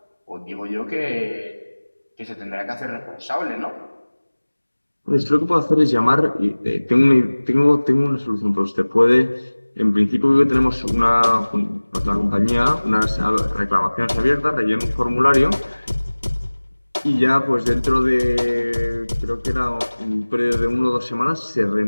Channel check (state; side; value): inverted; both; correlation -1.00